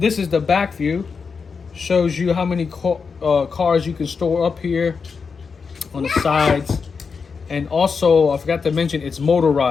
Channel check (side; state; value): right; quieter; 5.4 dB